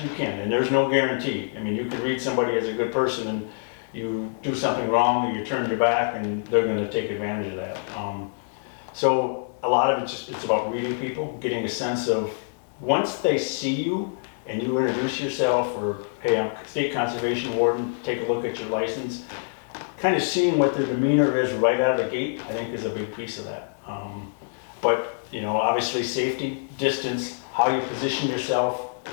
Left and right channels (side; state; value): right; silent; digital silence